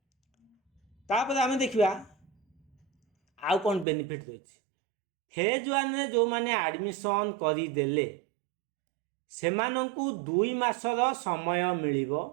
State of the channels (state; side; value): drops out; left; at 3.9 s